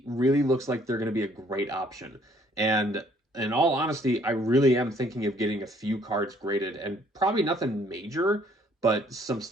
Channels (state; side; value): normal; both; correlation 0.62